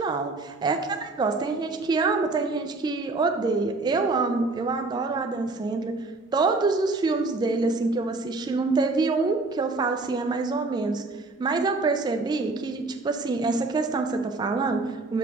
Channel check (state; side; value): quieter; left; 3.4 dB